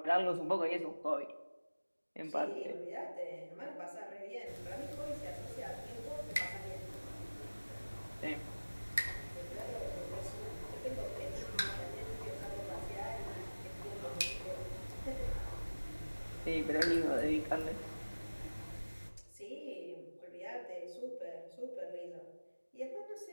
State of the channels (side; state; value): both; inverted; correlation -1.00